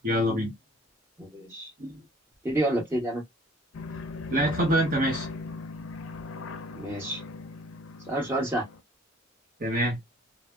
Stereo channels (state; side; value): normal; both; correlation 0.54